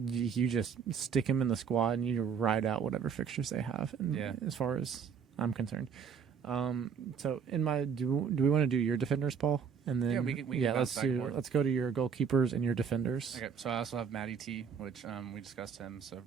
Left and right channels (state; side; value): quieter; left; 6.7 dB